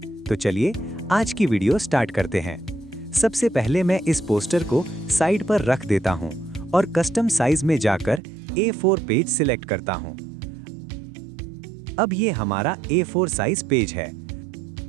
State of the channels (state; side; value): drops out; left; at 8.2 s